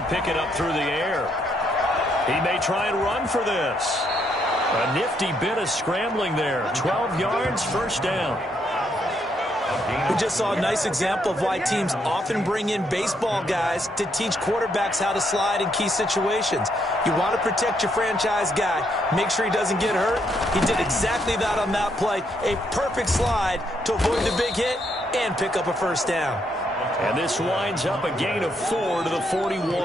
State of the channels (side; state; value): both; normal; correlation 0.75